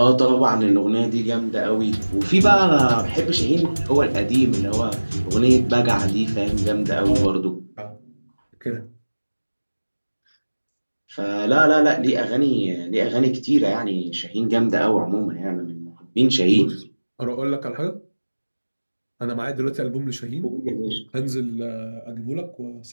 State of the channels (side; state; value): both; inverted; correlation -1.00